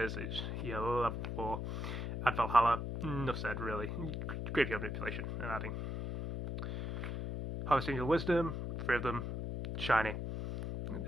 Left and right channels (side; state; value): left; noise; hum, 3 dB below the sound